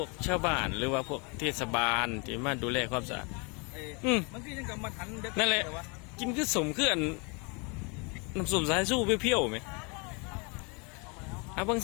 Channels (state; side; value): quieter; right; 31.9 dB